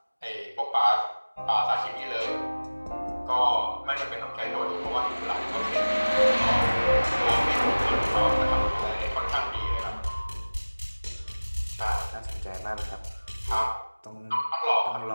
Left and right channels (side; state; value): both; inverted; correlation -1.00